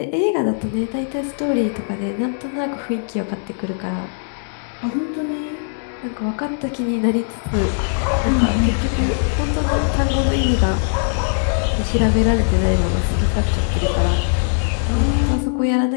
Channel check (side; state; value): right; silent; 64 dB below the other